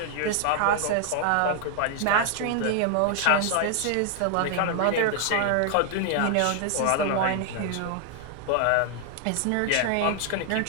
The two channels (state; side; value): different; both; correlation 0.00